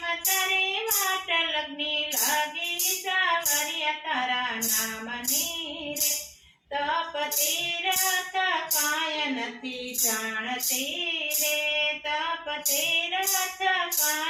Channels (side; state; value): both; identical; correlation 1.00